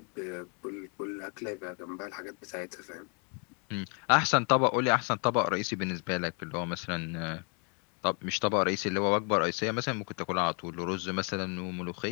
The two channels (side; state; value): right; quieter; 36.3 dB